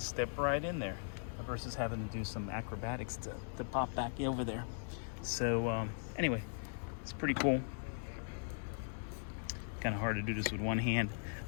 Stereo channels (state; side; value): silent; right; 52 dB below the other